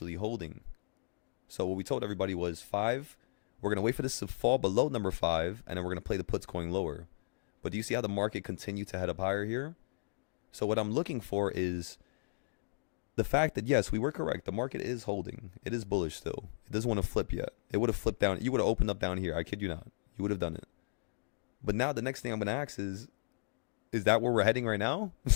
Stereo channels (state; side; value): quieter; right; 38.5 dB